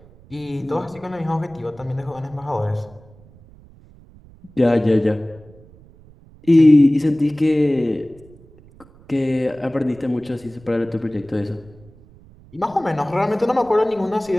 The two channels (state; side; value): noise; right; rumble, 25 dB below the sound